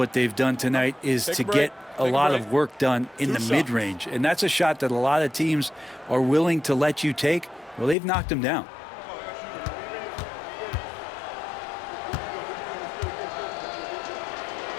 they've done tonight is to get a lot of work done in the mid-range. And that's a shot that a lot of teams are willing to let you take. Well, they've knocked them down.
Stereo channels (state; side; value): drops out; right; at 8.0 s